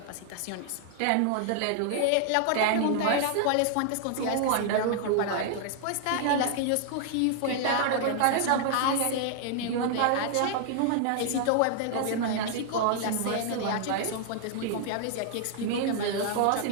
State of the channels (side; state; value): both; different; correlation 0.00